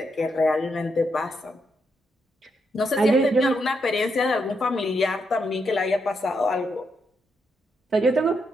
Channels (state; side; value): normal; both; correlation 0.80